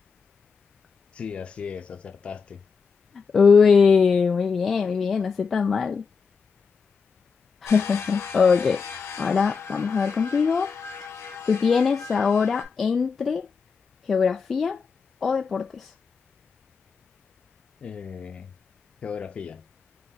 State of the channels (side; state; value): right; quieter; 5.4 dB